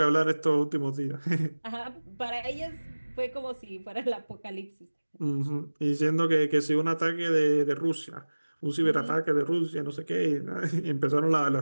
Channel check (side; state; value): both; inverted; correlation -1.00